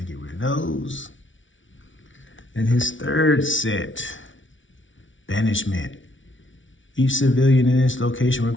to get rid of those. And his third set, Banishment. Each civilian in this location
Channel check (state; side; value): late; right; 0.56 ms